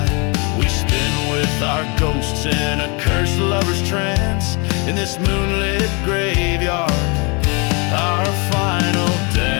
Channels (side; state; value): right; quieter; 31.4 dB